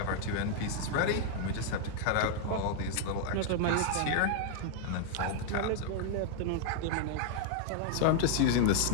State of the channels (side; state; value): both; different; correlation 0.00